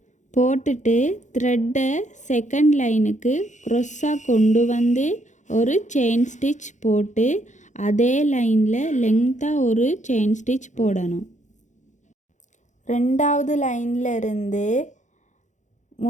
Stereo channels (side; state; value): right; late; 0.35 ms